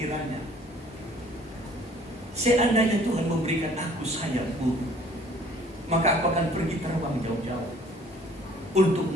seandainya Tuhan memberikan aku sayap burung, maka aku akan pergi terbang jauh-jauh untuk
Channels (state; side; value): normal; both; correlation 0.55